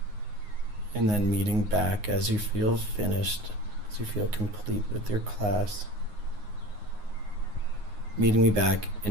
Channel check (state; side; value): late; left; 9.6 ms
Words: And then meeting back as you feel finished, as you feel complete with your class. Meeting me back